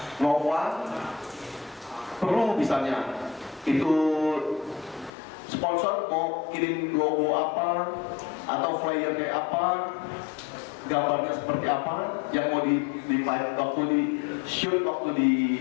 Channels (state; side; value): drops out; right; at 5.1 s